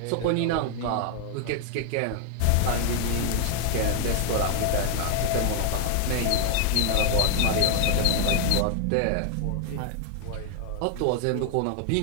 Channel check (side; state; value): both; different; correlation 0.01